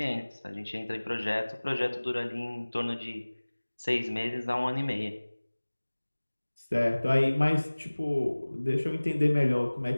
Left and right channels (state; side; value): inverted; both; correlation -1.00